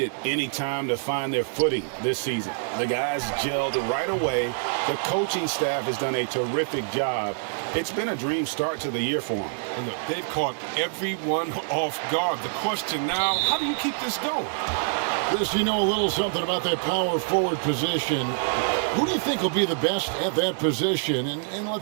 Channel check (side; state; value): left; silent; digital silence